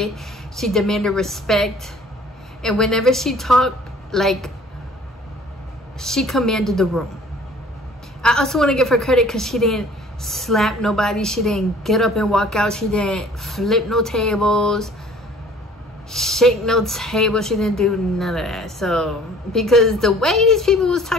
She demanded respect, and whenever she talked, like, she commanded the room. I also want to give her credit because she didn't slap nobody. She didn't get up and walk out. She didn't flip no tables, shake no table. She didn't do none of that. So because the way these people was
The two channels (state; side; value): normal; both; correlation 0.52